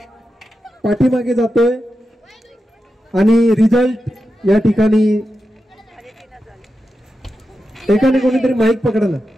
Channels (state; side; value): normal; both; correlation 0.90